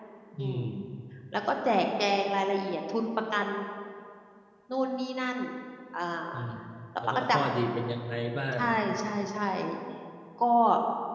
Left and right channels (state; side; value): identical; both; correlation 1.00